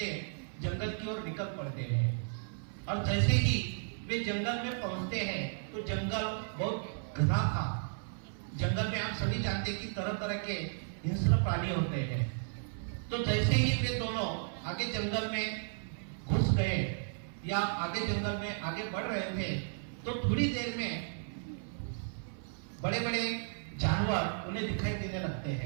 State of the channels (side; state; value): left; silent; 55 dB below the other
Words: जंगल की ओर निकल पड़ते हैं। और जैसे ही वे जंगल में पहुंचते हैं तो जंगल बहुत घना था। जंगल में आप सभी जानते हैं कि तरह तरह के हिंस्र प्राणी होते हैं। तो जैसे ही वे दोनों आगे जंगल में घुस गए या आगे जंगल में आगे बढ़ रहे थे, तो थोड़ी देर में बड़े बड़े जानवर उन्हें दिखाई देने लगते